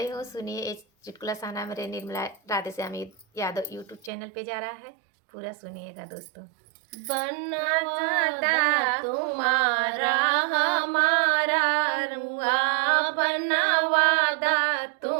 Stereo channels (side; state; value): left; drops out; at 4.1 s